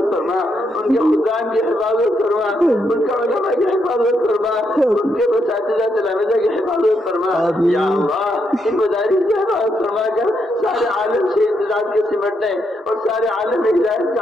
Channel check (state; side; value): normal; both; correlation 0.79